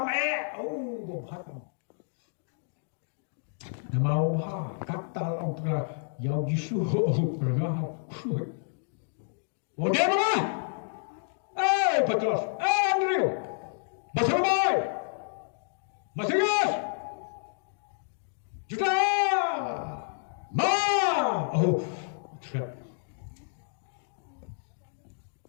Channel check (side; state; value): right; silent; digital silence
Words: Nama bahar kata orang yang jisu pernah. Oh dia mana? Petrus, Andrew, Basamai, Masias, Juta, trap.